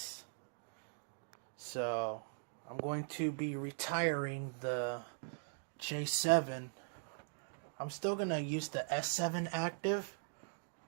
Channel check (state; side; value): silent; left; digital silence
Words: So I'm going to be retiring the J7. I'm still going to use the S7 active,